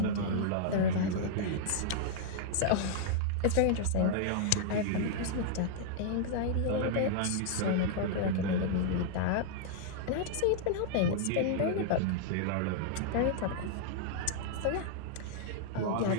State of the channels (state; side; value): different; both; correlation -0.01